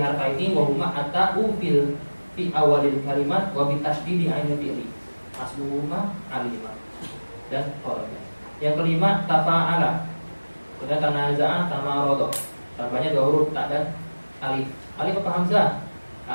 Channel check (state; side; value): inverted; both; correlation -1.00